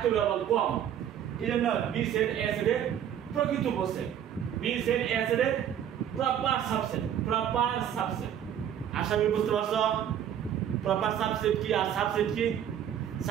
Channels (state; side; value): quieter; left; 9.8 dB